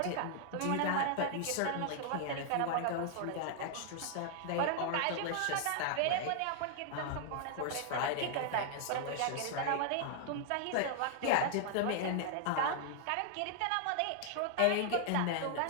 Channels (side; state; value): both; different; correlation -0.01